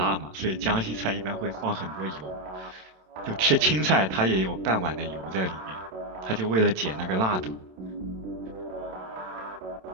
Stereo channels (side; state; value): left; late; 27 ms